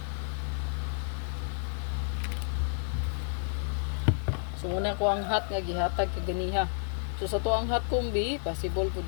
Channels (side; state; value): right; silent; 57 dB below the other